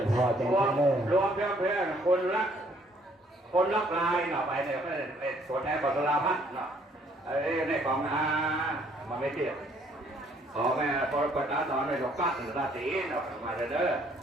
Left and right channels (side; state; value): both; normal; correlation 0.64